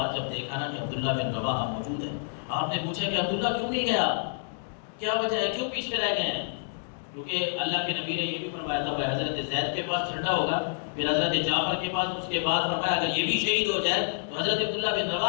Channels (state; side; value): silent; right; digital silence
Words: جب دیکھا نا کہ عبداللہ بن رواحہ موجود ہے، آپ نے پوچھا کہ عبداللہ کیوں نہیں گیا، کیا وجہ ہے، کیوں پیچھے رہ گئے ہیں؟ کیونکہ اللہ کے نبی نے یہ بھی فرمایا تھا کہ حضرت زید کے پاس جھنڈا ہوگا، پھر حضرت جعفر کے پاس، اس کے بعد فرمایا اگر یہ بھی شہید ہو جائے تو حضرت عبداللہ بن